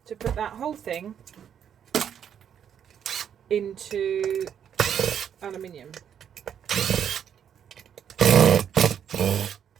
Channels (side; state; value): left; quieter; 8.7 dB